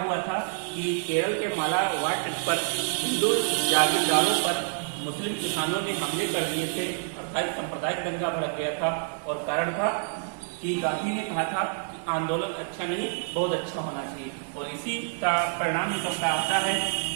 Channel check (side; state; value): left; silent; digital silence